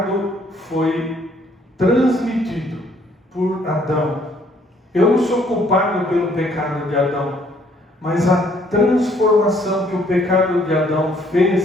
foi transmitido por Adão. Eu não sou culpado pelo pecado de Adão, mas a transformação que o pecado de Adão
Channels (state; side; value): normal; both; correlation 0.64